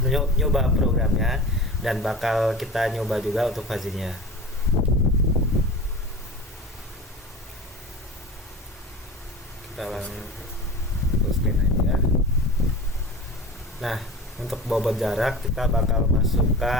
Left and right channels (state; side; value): normal; both; correlation 0.34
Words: dan bakal kita nyoba juga untuk fuzzy-nya. Kita langsung full screen aja. Nah, untuk bobot jarak kita bakal